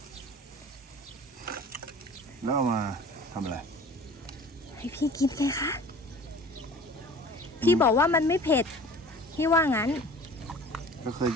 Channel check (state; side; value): normal; both; correlation 0.43